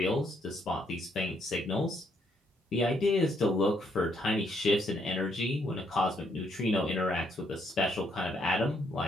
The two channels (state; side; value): normal; both; correlation 0.72